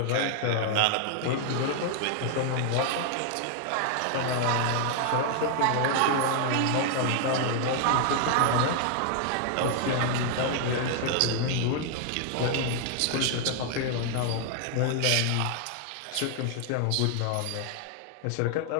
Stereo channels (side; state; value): both; different; correlation 0.00